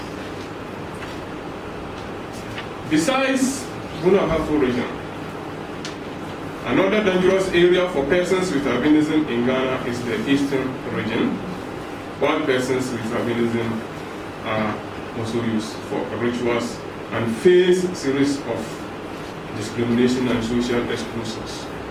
Besides Brong Ahafo Region, another dangerous area for persons with albinism in Ghana is the Eastern region, while persons with albinism are also used for rituals and face a series of discrimination and social exclusions.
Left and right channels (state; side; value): identical; both; correlation 1.00